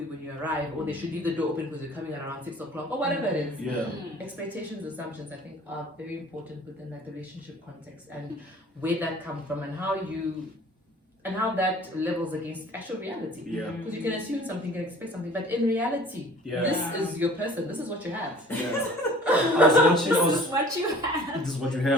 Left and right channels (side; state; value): both; normal; correlation 0.49